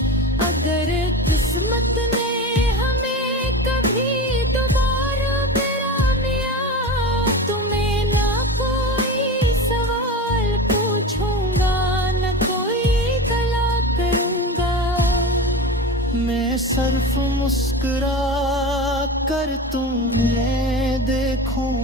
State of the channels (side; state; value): both; normal; correlation 0.28